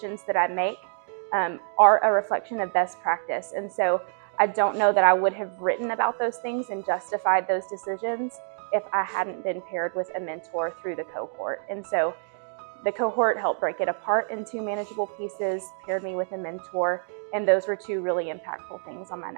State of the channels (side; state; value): left; silent; digital silence